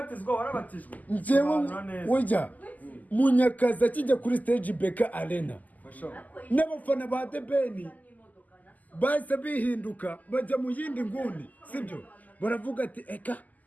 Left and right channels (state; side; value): late; right; 0.080 ms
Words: warabatijwe. Njyewe wejya Munyakazi akijya kuri stage Beka Arena, n'abafana ba The Ben bahise bihinduka bajya mu yindi nguni. Sibyo? Baravuga ati eka